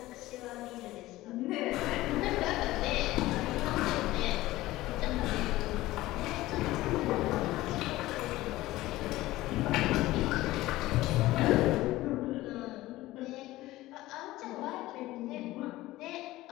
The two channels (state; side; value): quieter; right; 17.3 dB